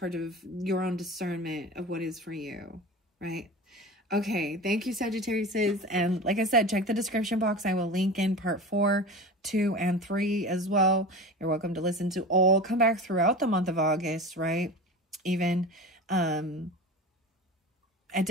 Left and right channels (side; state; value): both; normal; correlation 0.32